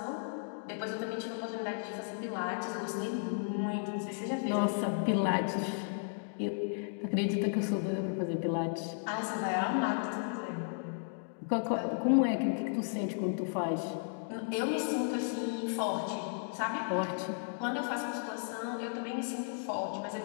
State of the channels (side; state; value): right; silent; digital silence